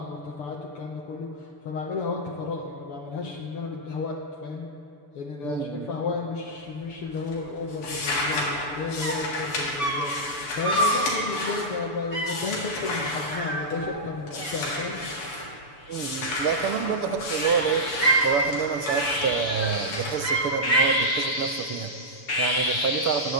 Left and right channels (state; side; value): late; right; 6.9 ms